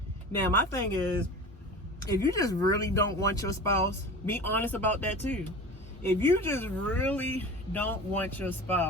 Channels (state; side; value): normal; both; correlation 0.35